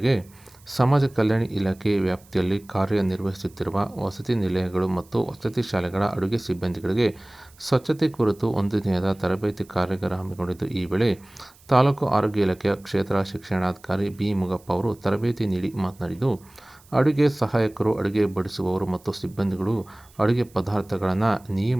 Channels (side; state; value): right; noise; hiss, 28 dB below the sound